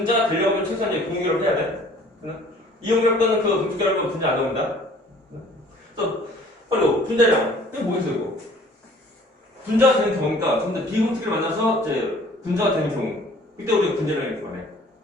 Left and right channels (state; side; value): normal; both; correlation 0.53